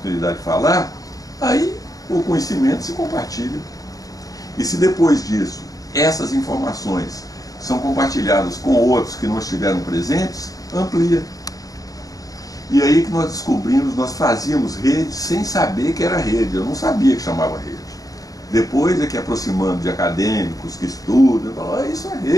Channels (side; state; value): right; late; 0.17 ms